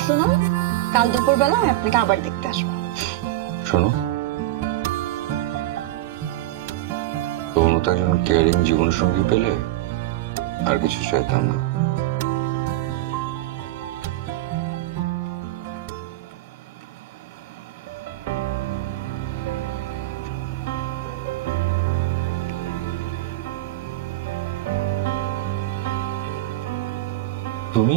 শুনুন, কাল দুপুরবেলা আমি আপনাকে আবার দেখতে আসবো। শোনো, তোমার মতো একজন কেয়ারিং জীবন সঙ্গী পেলে আর কিছু চাইতাম না। তুমি?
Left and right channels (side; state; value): left; quieter; 16.0 dB